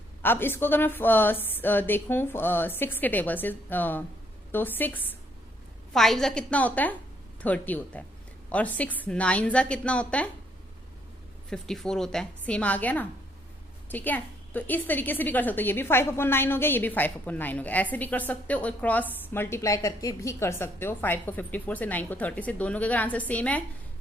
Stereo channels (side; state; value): both; normal; correlation 0.69